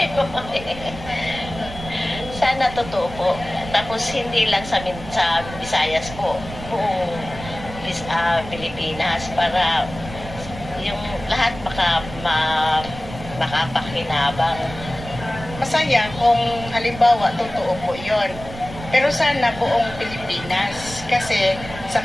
Sana totoo po. Tapos hindi lang sa Visayas po, buong Pilipinas para yung lahat makapakinabang. Masaya kung halimbawa totoo po yon. Pero sana buong Pilipinas kasi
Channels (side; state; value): right; noise; rumble, 13 dB below the sound